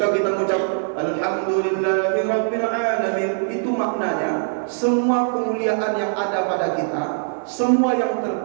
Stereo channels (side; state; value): left; silent; digital silence